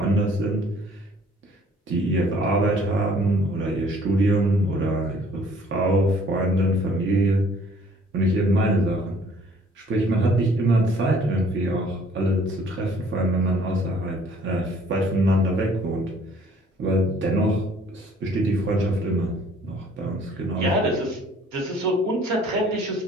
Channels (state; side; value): normal; both; correlation 0.57